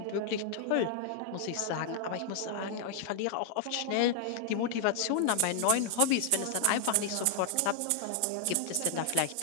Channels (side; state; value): both; different; correlation 0.00